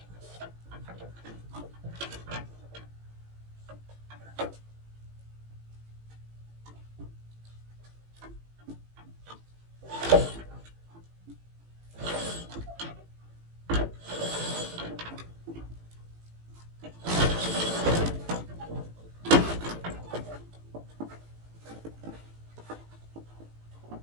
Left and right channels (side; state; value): left; late; 18 ms